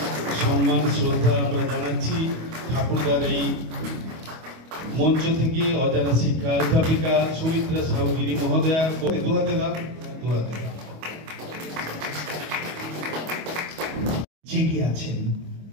সম্মান শ্রদ্ধা আমরা জানাচ্ছি ঠাকুরদার এই মঞ্চ থেকে অজানা শিক্ষা অধ্যাপিকা সুমিত্রা সাহুগিরি মহোদয়া জেগে আছেন।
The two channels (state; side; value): late; left; 25 ms